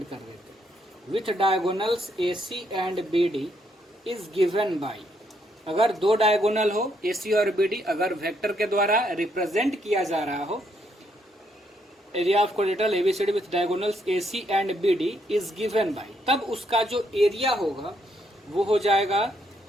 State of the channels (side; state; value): both; normal; correlation 0.74